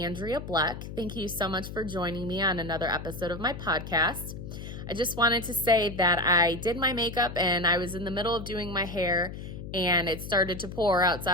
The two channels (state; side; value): noise; left; hum, 10 dB below the sound